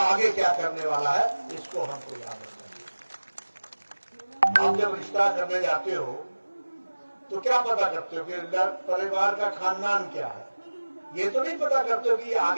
क्या करने वाला है। इसको हमको याद रखना चाहिए। आप जब रिश्ता करने जाते हो तो क्या पता करते हो कि परिवार का खानदान क्या है? ये तो नहीं पता करते हो कि ये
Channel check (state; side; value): inverted; both; correlation -1.00